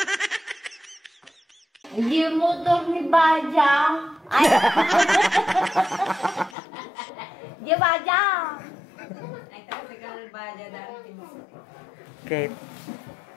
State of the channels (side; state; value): right; drops out; at 6.6 s